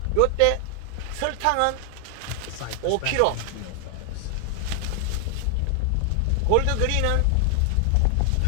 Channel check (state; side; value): different; both; correlation 0.00